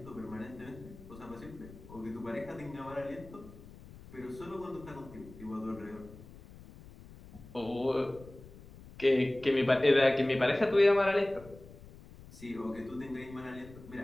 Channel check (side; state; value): left; noise; rumble, 18 dB below the sound